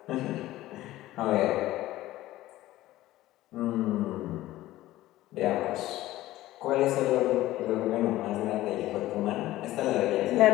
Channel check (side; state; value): right; quieter; 15.9 dB